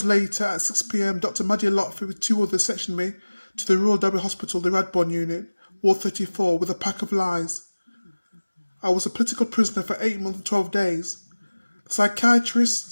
later, at 6 p.m, Dr. Madia Lotfi with 2 others sectioned me to the Royal Derby Hospital, the Radbourne Unit, Ward 34, with a pack of lies. I was a political prisoner for 8 months and 12 days. The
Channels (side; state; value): both; inverted; correlation -1.00